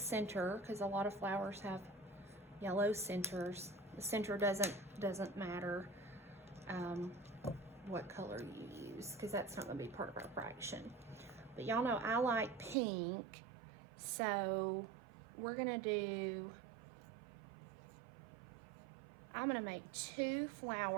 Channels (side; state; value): left; drops out; at 12.8 s